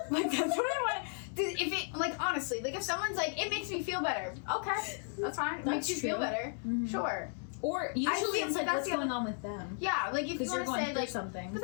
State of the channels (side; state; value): right; silent; 55 dB below the other